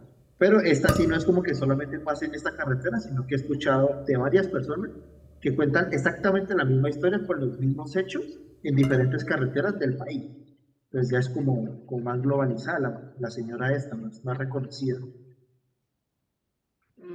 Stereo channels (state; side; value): identical; both; correlation 1.00